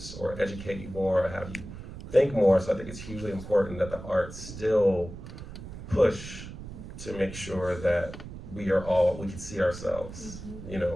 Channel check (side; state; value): right; noise; rumble, 12 dB below the sound